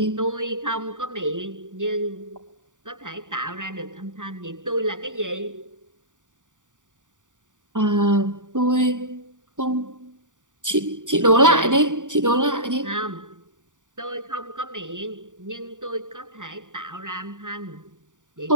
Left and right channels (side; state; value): left; late; 0.87 ms